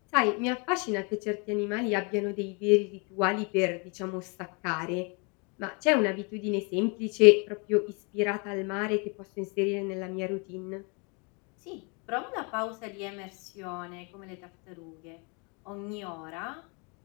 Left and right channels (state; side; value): quieter; right; 33.1 dB